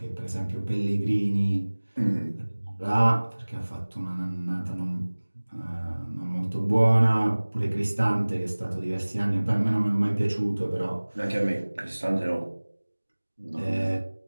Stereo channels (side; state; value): both; inverted; correlation -1.00